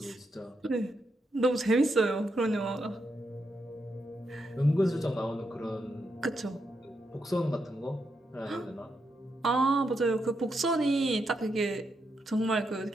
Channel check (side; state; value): both; normal; correlation 0.82